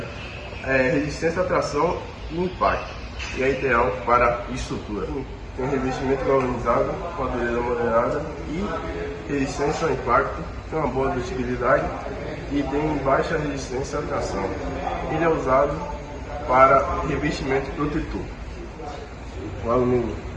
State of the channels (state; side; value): identical; both; correlation 1.00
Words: resistência à tração e impacto, e é ideal para estrutura. Tem revestimento galvanizado com a dureza moderada e resistência ao impacto, tem uma boa ductibilidade e tem baixa resistência à tração. Ele é usado para revestimento protetor. O alumínio